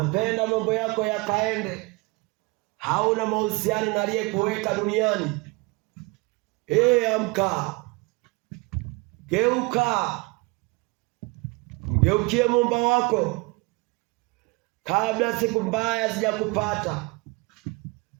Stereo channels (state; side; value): quieter; left; 26.3 dB